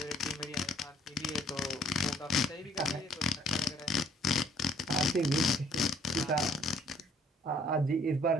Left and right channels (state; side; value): normal; both; correlation 0.62